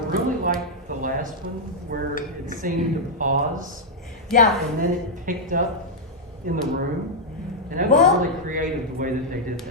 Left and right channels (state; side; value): normal; both; correlation -0.05